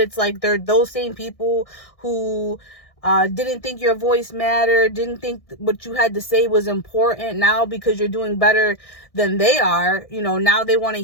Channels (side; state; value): right; late; 1.6 ms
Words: like they're those same people who didn't think your voice mattered, didn't think what you had to say was important. Now, because you're doing better than they are, you know, now they want to